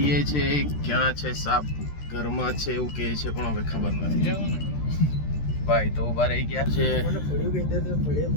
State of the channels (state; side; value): late; right; 13 ms